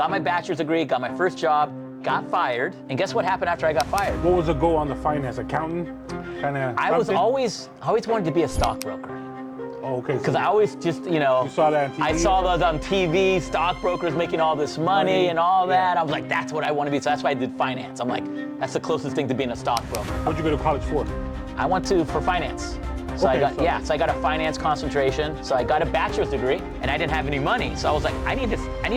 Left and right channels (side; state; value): both; identical; correlation 1.00